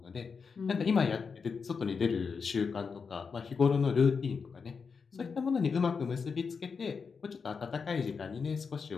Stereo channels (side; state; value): right; quieter; 5.5 dB